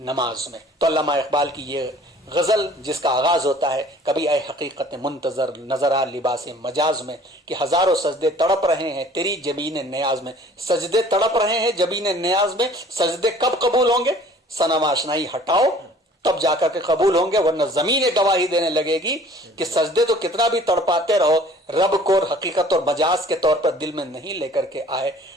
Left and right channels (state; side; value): normal; both; correlation 0.51